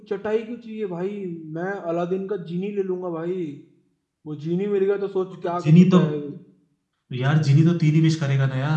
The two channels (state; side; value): identical; both; correlation 1.00